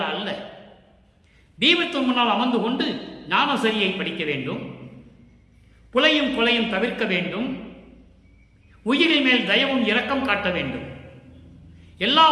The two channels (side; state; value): both; identical; correlation 1.00